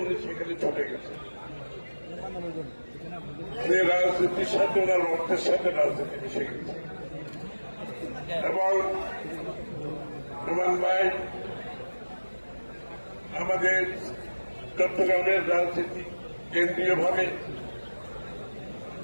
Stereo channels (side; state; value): both; inverted; correlation -1.00